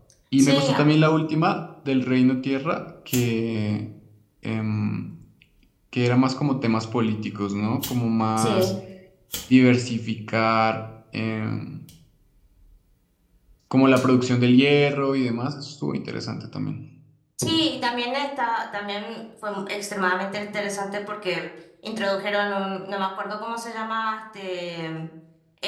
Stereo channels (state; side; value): identical; both; correlation 1.00